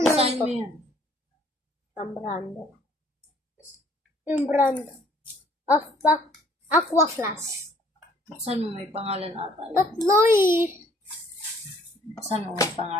Saan ito. mo yan? Ang brand. Yung brand of the Aqua Flash. Saan mo may pangalan ata? Tatlo eh. Saan mo may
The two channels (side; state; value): both; normal; correlation 0.60